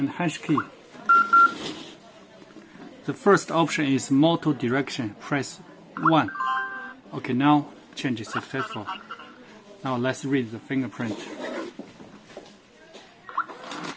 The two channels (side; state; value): both; identical; correlation 1.00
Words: hash key. The first option is motor direction. Press 1. Okay, now change is successful. Now let's read the fingerprint.